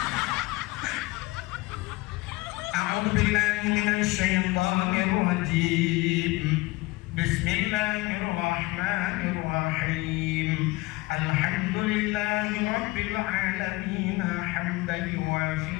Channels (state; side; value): quieter; right; 21.4 dB